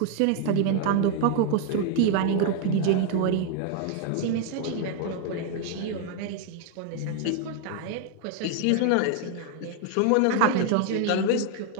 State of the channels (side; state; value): both; different; correlation 0.00